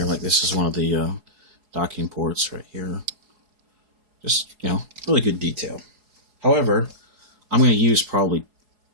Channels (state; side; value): late; left; 4.8 ms